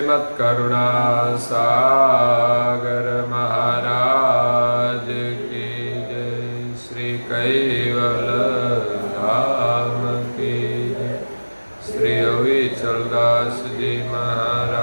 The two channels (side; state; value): both; inverted; correlation -1.00